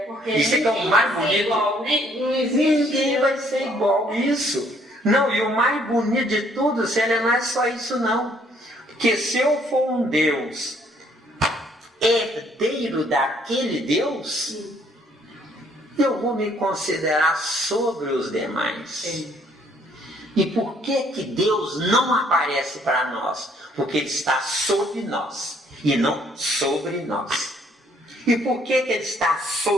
porque Isso é que é o mais bonito. igual, não existe. Ninguém vai ser igual. Isso. Não, e o mais bonito de tudo, não é só isso não. Porque se eu for um Deus herdeiro daquele Deus, eu vou me considerar sobre os demais. E por que Deus não aparece para nós? Porque Ele está sobre nós e não sobre nós. E por que Ele está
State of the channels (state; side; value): normal; both; correlation 0.64